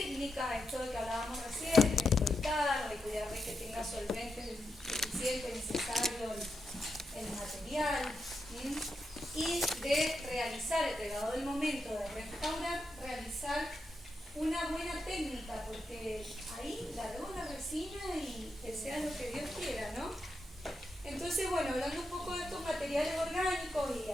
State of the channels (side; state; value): both; normal; correlation 0.86